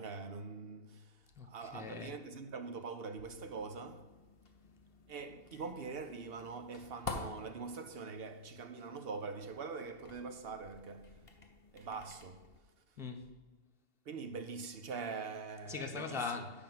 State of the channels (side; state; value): left; late; 2.8 ms